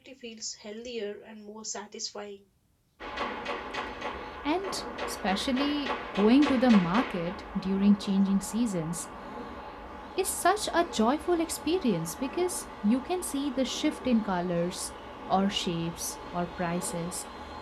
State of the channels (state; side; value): identical; both; correlation 1.00